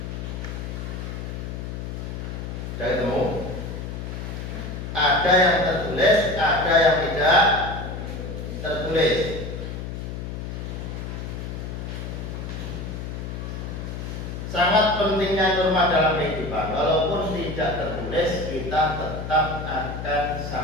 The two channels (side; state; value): left; noise; hum, 6 dB below the sound